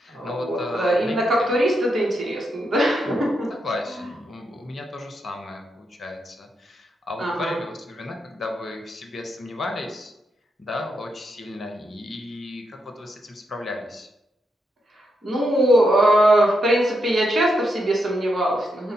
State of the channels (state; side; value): normal; both; correlation 0.82